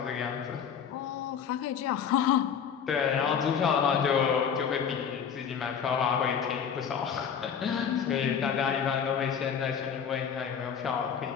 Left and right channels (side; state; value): right; quieter; 7.5 dB